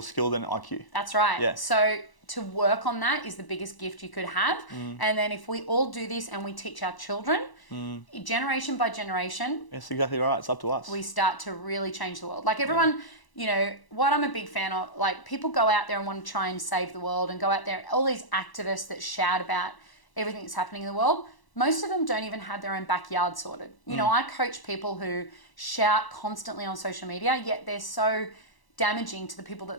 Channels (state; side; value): late; right; 1.0 ms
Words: skill than IQ. That's right. Yeah. So to work on that is the biggest gift you could have. And then if we all do this and we teach our children, generation by generation. That's exactly right. It's up to us. We start to really change the world. Like everyone, you know, what I'm a big fan of, like people go out there and want to try and save the world and go out there, all these activists that shout about everything that's happening in the world. Most of them don't even have their own backyard sorted. You know, I coach people who shout constantly on social media, yet they're so damaging to the people that